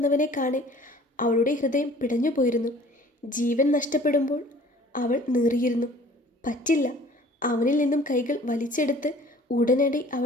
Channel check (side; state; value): both; normal; correlation 0.50